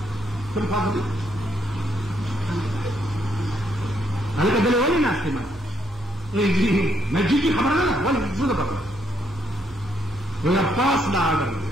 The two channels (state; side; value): normal; both; correlation 0.74